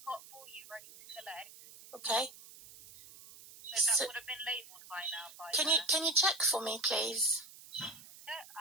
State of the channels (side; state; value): right; noise; hiss, 19 dB below the sound